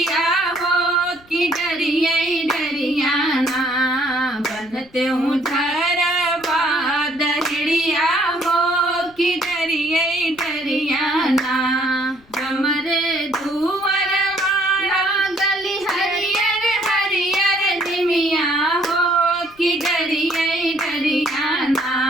हो कि डरिए डरियाना बनते हूँ धरवा दहड़िया हो कि डरिए डरियाना हमरे दुवर वाला गली हरियर हरियर निमिया हो कि डरिए डरियाना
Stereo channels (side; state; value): left; noise; rumble, 28 dB below the sound